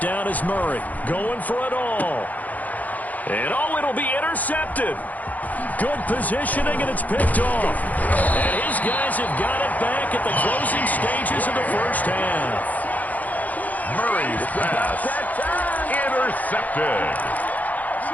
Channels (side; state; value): right; late; 0.079 ms